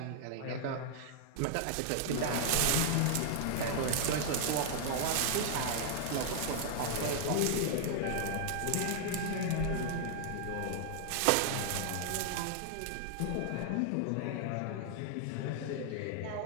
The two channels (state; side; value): different; both; correlation -0.01